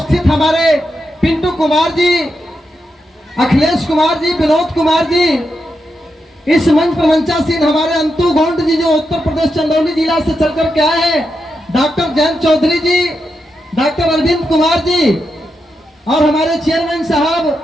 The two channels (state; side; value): normal; both; correlation 0.86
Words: हमारे पिंटू कुमार जी, अखिलेश कुमार जी, विनोद कुमार जी, इस मंच पर मंचासीन हमारे अंतु गोंड जी जो उत्तर प्रदेश चंदौली जिला से चलकर के आए हैं, डॉक्टर जयंत चौधरी जी, डॉक्टर अरविंद कुमार जी और हमारे चेयरमैन साहब